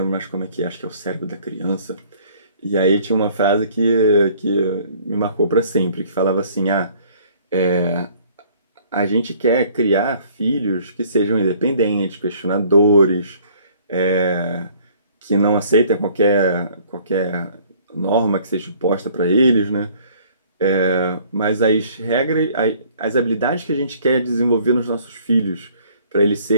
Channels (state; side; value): inverted; both; correlation -0.57